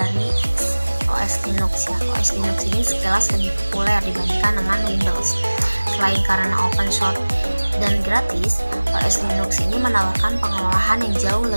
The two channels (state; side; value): inverted; both; correlation -1.00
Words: OS Linux ya. OS Linux ini sekilas lebih populer dibandingkan dengan Windows. Selain karena open source dan gratis, OS Linux ini menawarkan pengelolaan yang jauh